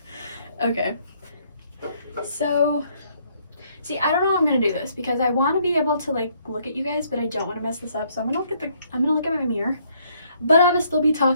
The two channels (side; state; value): both; inverted; correlation -0.68